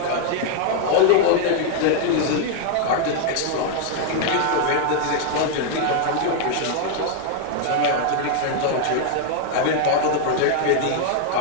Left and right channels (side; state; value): both; different; correlation 0.00